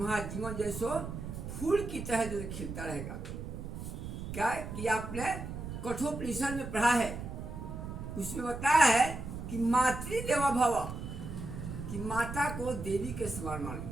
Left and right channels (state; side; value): noise; right; rumble, 7 dB below the sound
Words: जीवन जैसो फूल की तरह जो खिलता रहेगा। क्या कि आपने कठोपनिषद में पढ़ा है, उसमें बताया है कि मातृदेवो भव, कि माता को देवी के समान मानो,